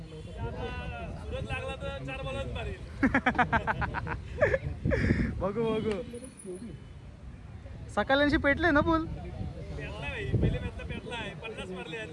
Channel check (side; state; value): both; identical; correlation 1.00